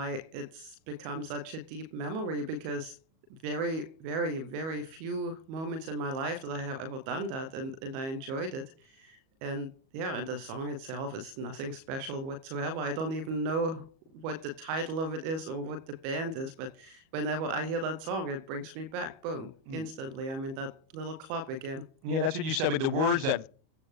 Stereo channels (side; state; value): left; late; 37 ms